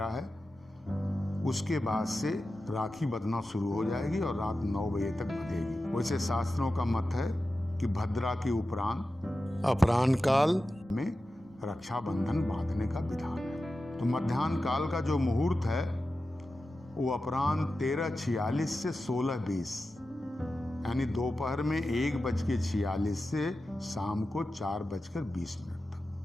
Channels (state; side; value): normal; both; correlation 0.93